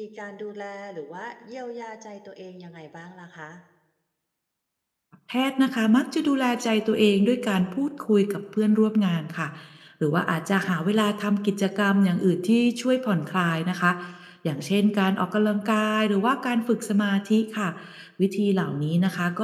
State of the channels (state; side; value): identical; both; correlation 1.00